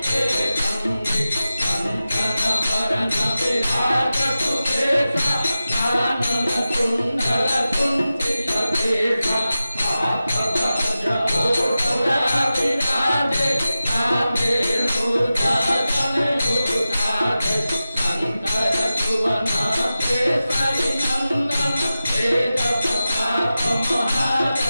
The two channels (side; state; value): both; inverted; correlation -0.94